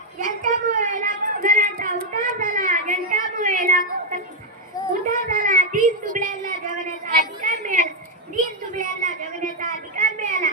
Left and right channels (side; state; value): both; normal; correlation -0.01